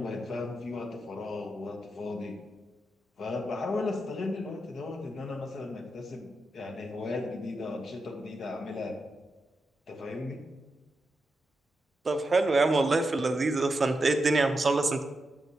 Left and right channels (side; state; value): both; normal; correlation 0.87